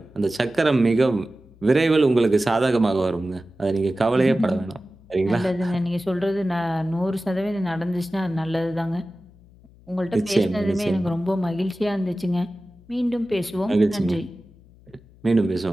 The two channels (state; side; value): noise; left; hum, 26 dB below the sound